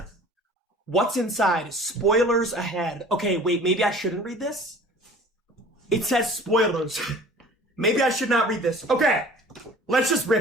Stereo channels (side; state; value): both; normal; correlation 0.46